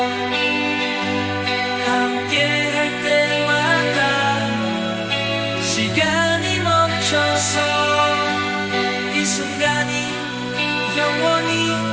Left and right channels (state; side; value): identical; both; correlation 1.00